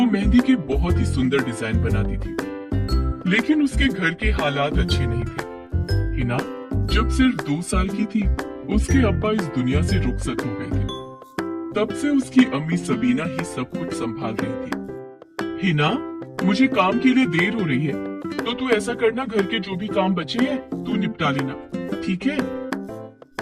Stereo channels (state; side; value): identical; both; correlation 1.00